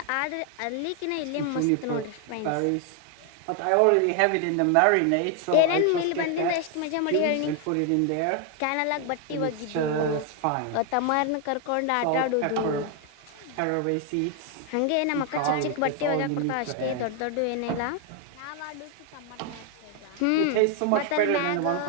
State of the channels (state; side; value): different; both; correlation 0.01